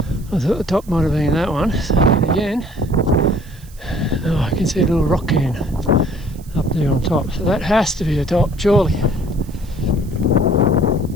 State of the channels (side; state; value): right; noise; hiss, 25 dB below the sound